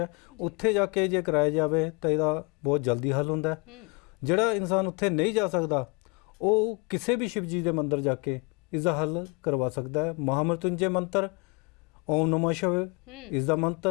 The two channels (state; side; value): quieter; right; 30.7 dB